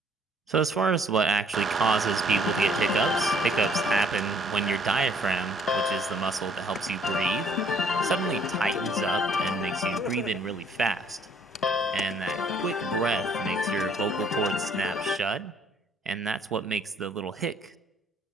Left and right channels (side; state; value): both; normal; correlation 0.62